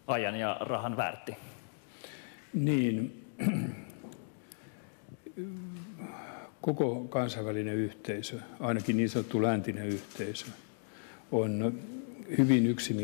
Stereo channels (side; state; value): right; silent; digital silence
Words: ajan ja rahan väärti? Niin, koko kansainvälinen yhteisö, ainakin niin sanottu läntinen yhteisö, on hyvin